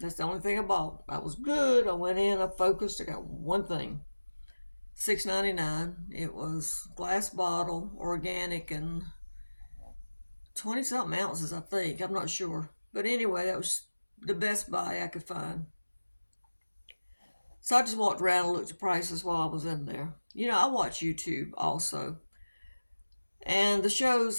the only thing I bought. I was good. I went in, I focused, I got one thing. $6.99. It was glass bottle, organic, and 20 something ounces, I think. I'm not sure. But anyway, that was the best buy I could find. So I just walked around and looked at prices while I was in there. I watch YouTube also. And the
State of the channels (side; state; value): both; inverted; correlation -1.00